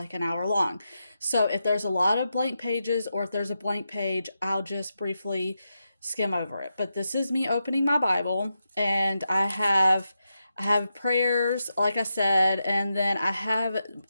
an hour long. So if there's a lot of blank pages or if there's a blank page, I'll just briefly skim over it. But this is me opening my Bible, and I have prayers, like I said, and then I have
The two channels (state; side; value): inverted; both; correlation -0.87